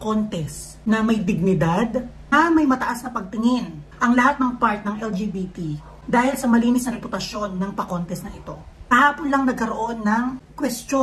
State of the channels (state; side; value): identical; both; correlation 1.00